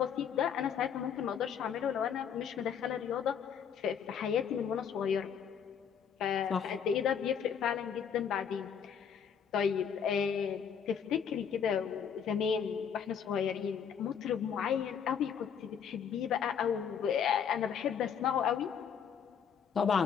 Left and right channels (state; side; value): quieter; right; 7.6 dB